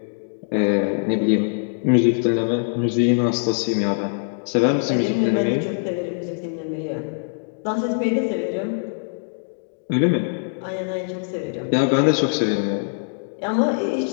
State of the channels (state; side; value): silent; right; digital silence